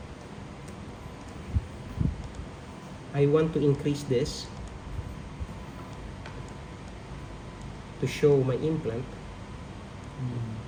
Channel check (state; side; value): identical; both; correlation 1.00